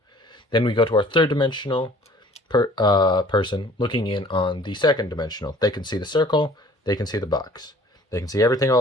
Then we go to our third dimensional person looking in on the second dimensional. They can see the circle, they can see the box, they can see everything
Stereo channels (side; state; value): both; normal; correlation 0.52